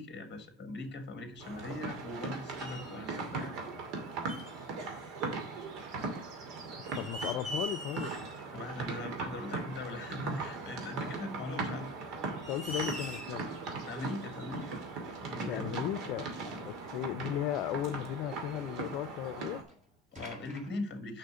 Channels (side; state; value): both; normal; correlation 0.32